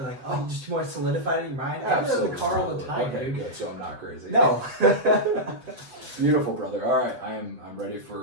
like, just more solidified in your mind. I do it in the car all the time, okay, dude. Good. So I'm not crazy. No. Beautiful, brother. All right, I'm ready for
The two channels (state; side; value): late; left; 7.8 ms